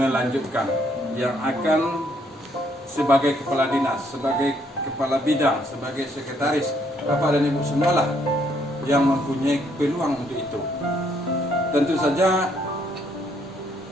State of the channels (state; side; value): normal; both; correlation 0.70